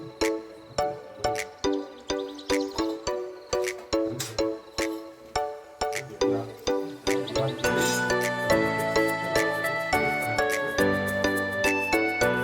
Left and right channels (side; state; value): both; identical; correlation 1.00